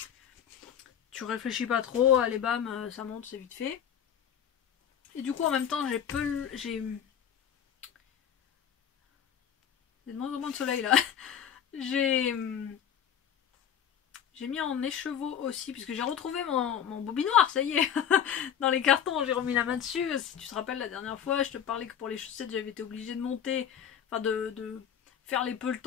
Tu réfléchis pas trop, allez bam, ça monte, c'est vite fait. Et du coup en même temps j'ai de moins en moins de soleil là. j'ai mis en écheveau aussi, puisque j'ai retrouvé mon bobinoir, ça y est. Dans les cartons, j'ai remis la main dessus. Si tu te rappelles, la dernière fois, je te parlais que pour les chaussettes, j'avais été obligée de monter, enfin de faire les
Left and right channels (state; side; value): quieter; right; 9.0 dB